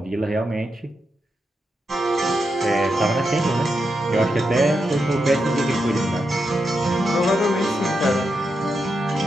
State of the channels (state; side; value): normal; both; correlation 0.85